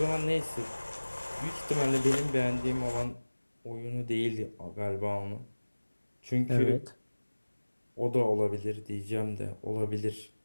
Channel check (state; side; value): inverted; both; correlation -1.00